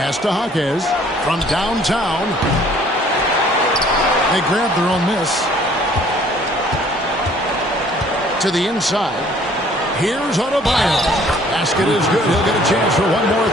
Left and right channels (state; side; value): normal; both; correlation 0.57